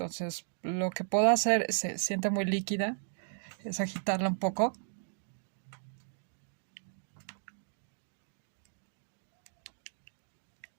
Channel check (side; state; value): left; silent; digital silence